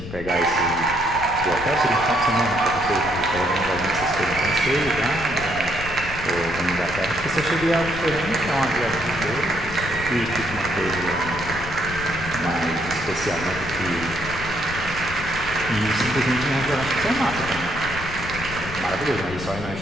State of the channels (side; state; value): left; noise; rumble, 10 dB below the sound